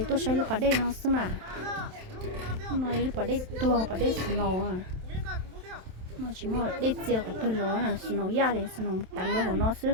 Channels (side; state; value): left; late; 27 ms